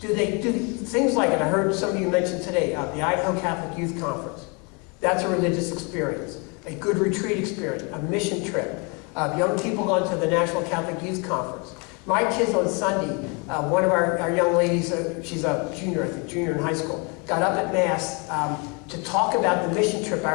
Do they do things like, and I heard some of you mention today, the Idaho Catholic Youth Conference. That's a religious experience. A good retreat experience, a mission trip. Young people going to the National Catholic Youth Conference. My kids on Sunday, one of our young ladies, she's a junior, I think, junior in high school, got up at Mass to talk about the mission trip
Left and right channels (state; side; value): quieter; right; 32.0 dB